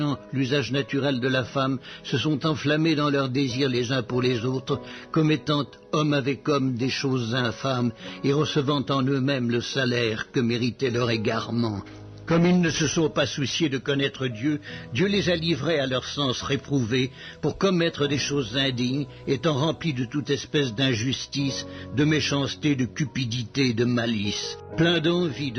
l'usage naturel de la femme, se sont enflammés dans leurs désirs les uns pour les autres, commettant homme avec homme des choses infâmes, et recevant en eux-mêmes le salaire que méritait leur égarement. Comme ils ne se sont pas souciés de connaître Dieu, Dieu les a livrés à leur sens réprouvé pour commettre des choses indignes, étant remplis de toute espèce d'injustice, de méchanceté, de cupidité, de malice. Pleins d'envie,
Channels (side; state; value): both; identical; correlation 1.00